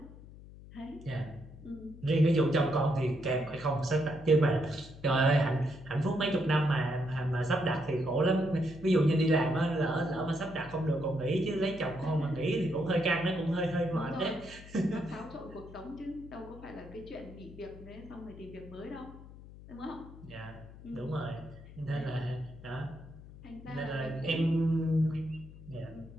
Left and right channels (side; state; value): left; noise; hum, 17 dB below the sound